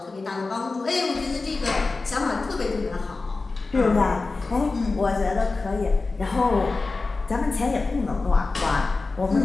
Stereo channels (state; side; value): quieter; right; 3.7 dB